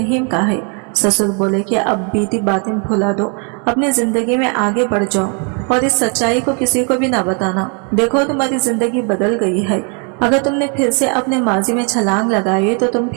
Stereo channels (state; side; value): quieter; left; 38.0 dB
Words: का है। ससुर बोले कि अब बीती बातें भुला दो, अपनी जिंदगी में आगे बढ़ जाओ और इस सच्चाई को किसी को भी ना बताना। देखो, तुम्हारी जिंदगी बदल गई है। अगर तुमने फिर से अपने माजी में छलांग लगाई तो तुम